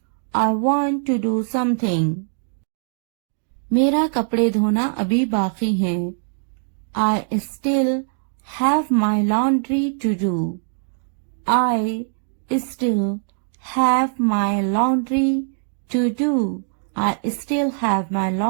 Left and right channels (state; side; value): silent; left; digital silence